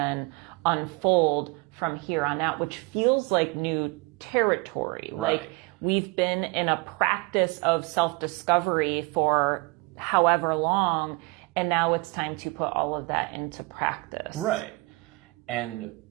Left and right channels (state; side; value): quieter; left; 26.7 dB